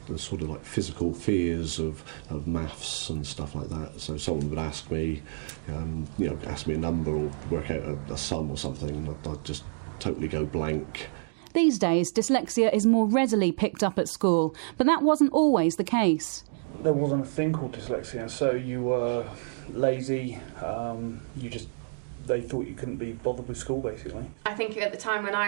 sort of like physical fears of maths and stuff like that. So someone would ask me, ask me a number or work out a sum or something, and I'd just totally go blank. These days, dyslexia is more readily picked up at school, but that wasn't always the case. There wasn't a thing called dyslexia, so you were lazy, they thought you couldn't be bothered with school, basically. I think at the time when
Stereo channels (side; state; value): left; silent; digital silence